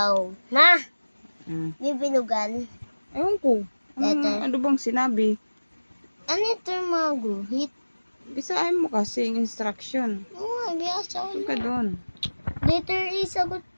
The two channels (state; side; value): inverted; both; correlation -1.00